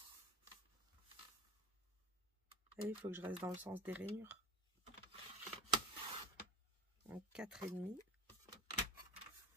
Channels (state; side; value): normal; both; correlation 0.32